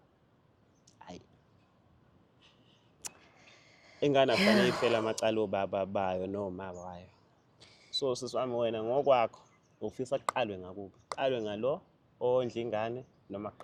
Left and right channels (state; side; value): identical; both; correlation 1.00